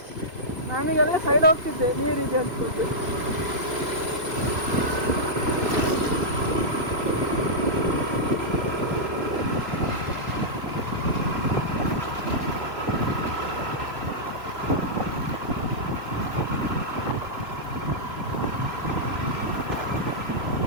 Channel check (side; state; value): left; late; 2.6 ms